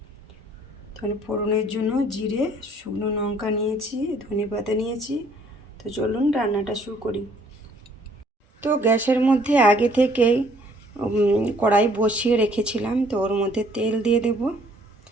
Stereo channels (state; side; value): normal; both; correlation 0.61